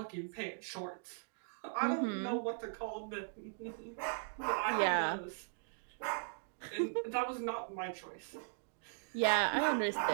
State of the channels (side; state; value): left; silent; digital silence